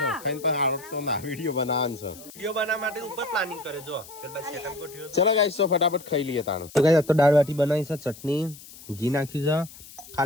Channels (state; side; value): noise; left; hiss, 18 dB below the sound